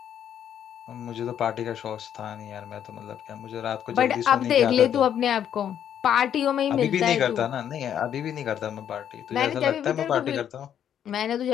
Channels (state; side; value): quieter; right; 9.5 dB